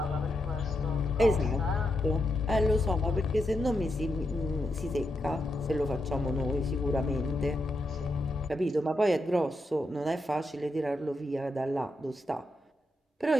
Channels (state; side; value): normal; both; correlation 0.84